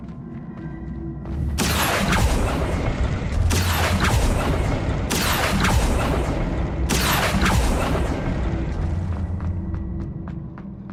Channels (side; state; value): both; identical; correlation 1.00